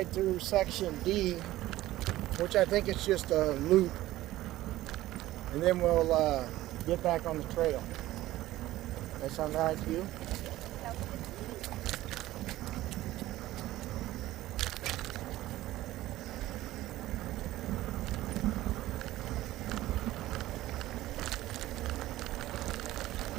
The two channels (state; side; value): quieter; left; 15.9 dB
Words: through section D, which I think is just a loop. And then we'll get back on the trail. That sound all right to you?